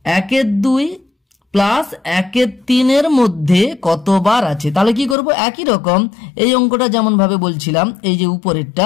1/2 প্লাস 1/3 এর মধ্যে কতবার আছে। তাহলে কি করব? একই রকম এই অঙ্কটা যেমন ভাবে বলছিলাম, এই যে উপরেরটা,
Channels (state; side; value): drops out; right; at 5.2 s